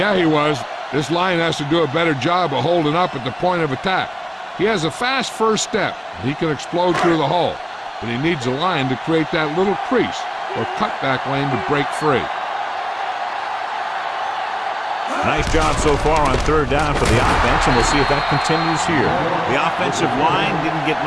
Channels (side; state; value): both; identical; correlation 1.00